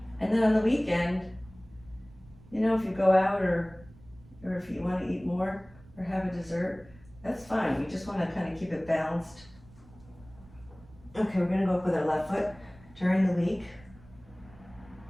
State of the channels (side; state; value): right; noise; rumble, 23 dB below the sound